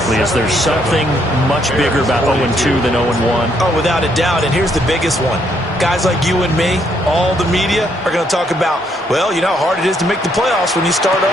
is there something much bigger about 0-2 than 0-1? Oh, without a doubt. And here's the biggest one. Guys like you and me, all the media, are going to talk about, well, you know how hard it is to make the playoffs when you start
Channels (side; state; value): both; normal; correlation 0.72